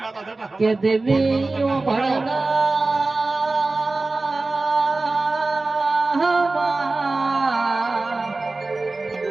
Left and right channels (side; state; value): left; quieter; 3.3 dB